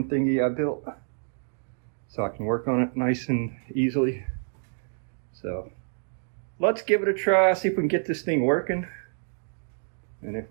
thingy I built, so I can work on it nice and easily. So let's give it a try, see if we can get this thing working. And if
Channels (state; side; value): silent; left; digital silence